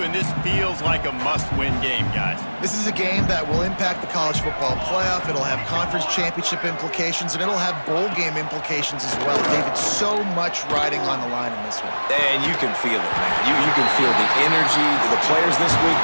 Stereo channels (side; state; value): both; inverted; correlation -1.00